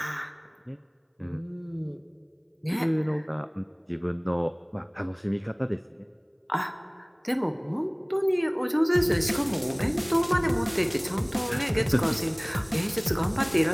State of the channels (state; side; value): identical; both; correlation 1.00